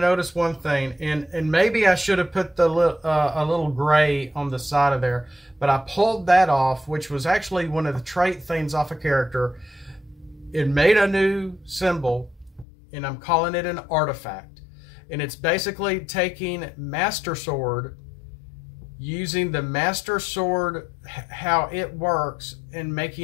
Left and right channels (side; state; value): right; drops out; at 12.7 s